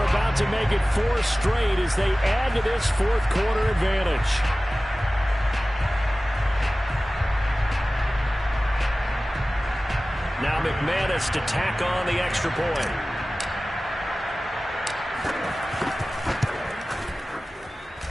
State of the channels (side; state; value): both; normal; correlation 0.97